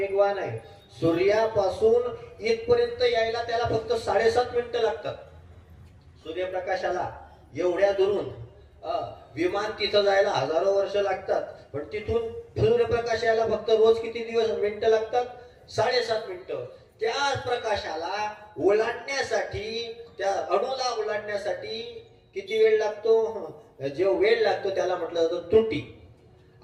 आहे. सूर्यापासून इथपर्यंत यायला त्याला फक्त 7.5 मिनिटं लागतात. सूर्यप्रकाशाला एवढ्या दुरून विमान तिथं जायला हजारो वर्ष लागतात. पण तिथून सूर्यप्रकाश यायला फक्त रोज किती मिनिटं लागतात? 7.5 मिनिटं. त्या प्रकाशाला ओलांडण्यासाठी, त्या अणूला ओलांडण्यासाठी किती वेळ लागतो? जो वेळ लागतो त्याला म्हटलं जातं त्रुटी.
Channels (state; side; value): identical; both; correlation 1.00